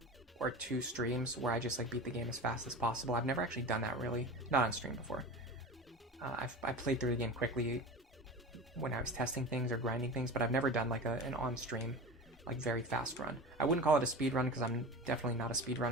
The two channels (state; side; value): normal; both; correlation 0.32